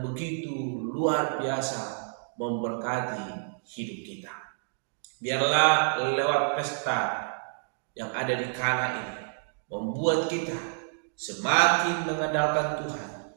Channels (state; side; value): silent; left; digital silence